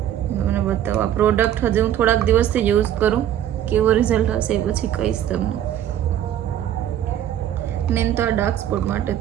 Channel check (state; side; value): quieter; left; 11.0 dB